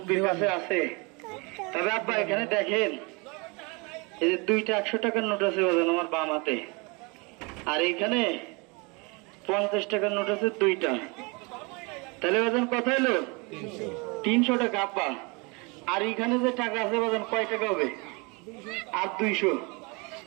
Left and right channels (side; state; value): left; quieter; 29.0 dB